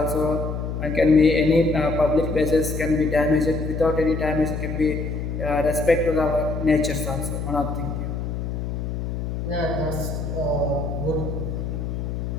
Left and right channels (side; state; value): left; noise; hum, 4 dB below the sound